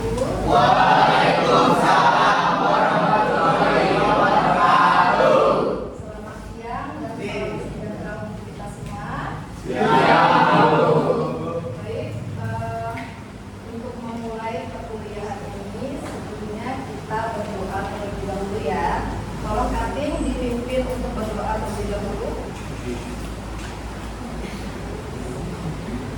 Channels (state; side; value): identical; both; correlation 1.00